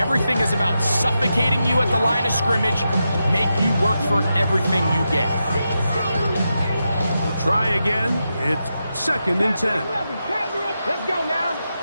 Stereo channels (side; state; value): both; inverted; correlation -0.88